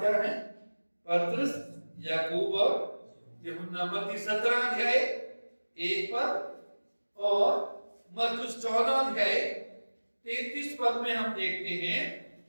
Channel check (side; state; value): both; inverted; correlation -1.00